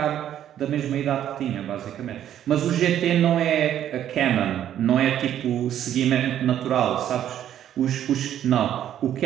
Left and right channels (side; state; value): left; quieter; 10.8 dB